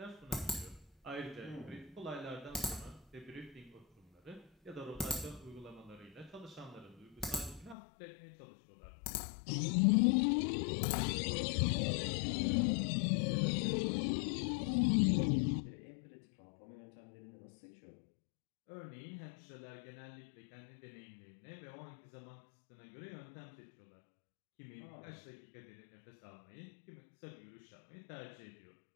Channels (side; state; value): right; drops out; at 7.8 s